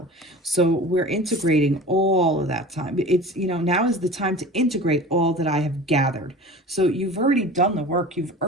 So we're integrating all of that time. It's, you know, now is the time to integrate all that I have gathered. So you've already done the work. You've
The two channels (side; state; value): both; normal; correlation 0.37